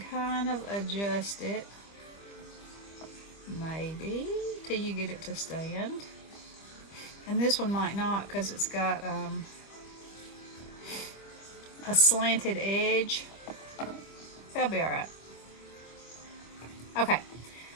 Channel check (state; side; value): late; right; 25 ms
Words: kind of adjust it, maybe, till you get it to stand. And this one might not because it's got a slanted edge. That'll be alright. Okay,